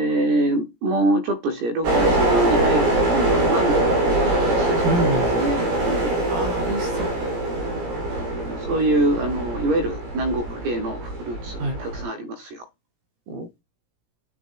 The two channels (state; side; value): late; left; 17 ms